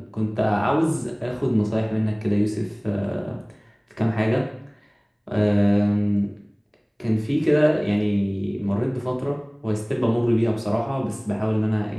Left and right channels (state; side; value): identical; both; correlation 1.00